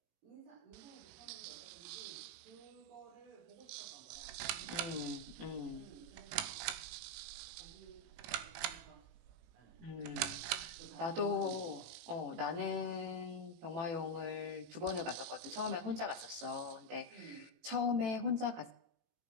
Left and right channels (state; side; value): late; left; 18 ms